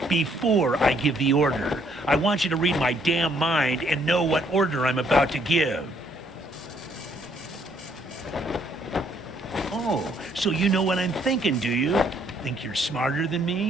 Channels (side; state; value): both; normal; correlation 0.67